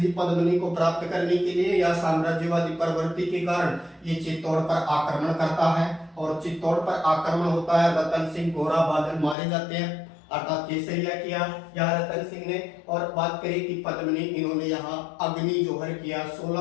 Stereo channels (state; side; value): drops out; right; at 9.3 s